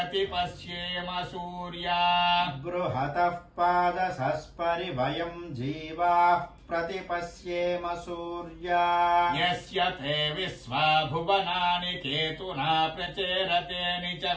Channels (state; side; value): identical; both; correlation 1.00